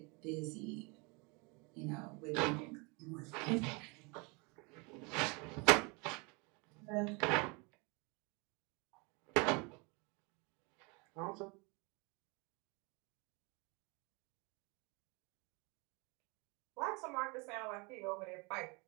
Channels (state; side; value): quieter; left; 29.9 dB